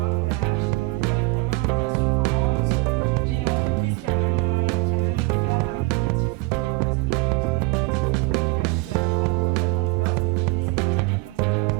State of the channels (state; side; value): quieter; left; 24.0 dB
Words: acheter mon billet d'avion, mon assurance. J'ai une entreprise qui a même offert un objectif photo parce que j'avais besoin d'un objectif photo. Et puis il a dit banco, nous on te l'offre et puis c'est comme ça qu'on contribue à